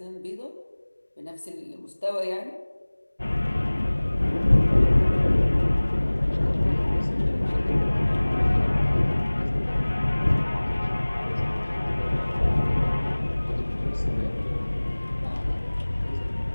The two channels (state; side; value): inverted; both; correlation -1.00